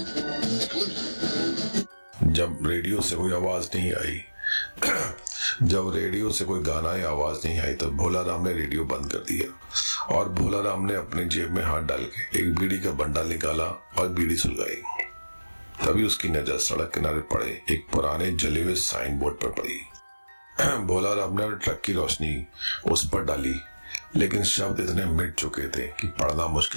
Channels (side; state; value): both; inverted; correlation -1.00